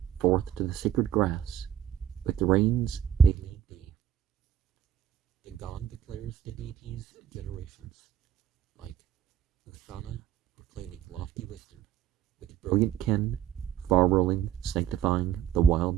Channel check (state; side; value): quieter; left; 10.0 dB